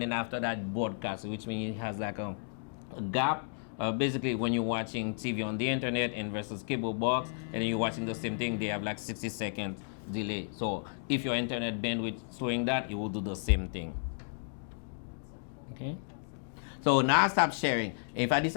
then after that broadcast, which means it has like a gap. Basically, when you're watching TV on the internet and versus cable box, and then you're watching the same thing, they have like 60-second delay. So if your internet bandwidth is showing that, it will do the same thing. Okay. So now I stop sharing. If I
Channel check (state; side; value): silent; right; digital silence